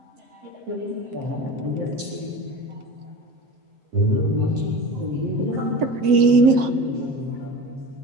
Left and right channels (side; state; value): left; late; 7.8 ms